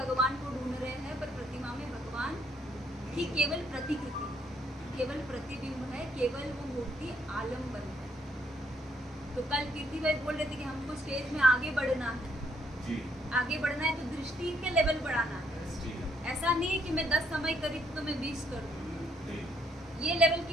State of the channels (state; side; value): normal; both; correlation 0.70